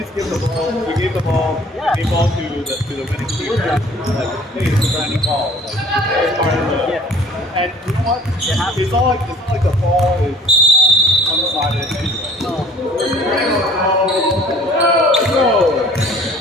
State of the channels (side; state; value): both; normal; correlation 0.51